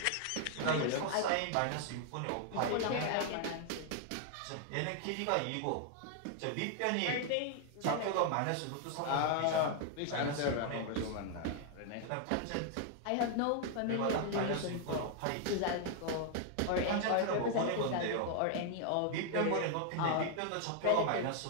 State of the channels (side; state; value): both; different; correlation 0.00